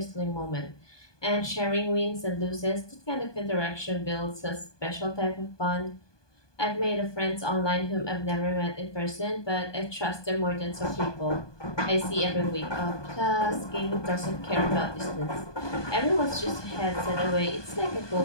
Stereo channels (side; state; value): right; late; 1.2 ms